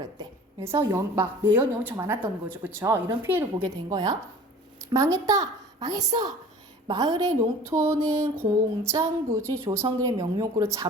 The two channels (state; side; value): normal; both; correlation 0.44